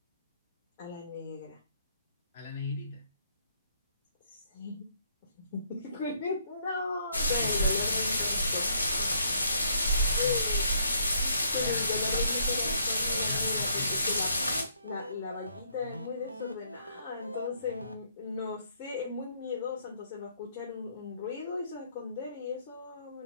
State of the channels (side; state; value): both; inverted; correlation -0.67